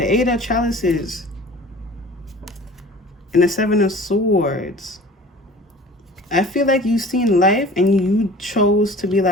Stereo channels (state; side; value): normal; both; correlation 0.44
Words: 8 of Chalices. And the 7 of Swords. I feel like you've seen life and you chose to be